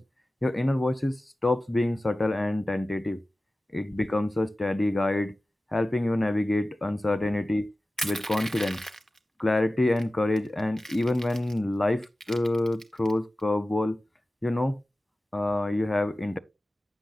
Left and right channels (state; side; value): normal; both; correlation 0.96